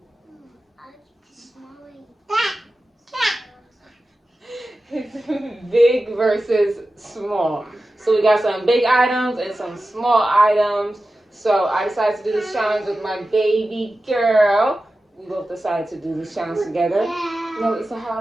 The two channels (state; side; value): normal; both; correlation 0.94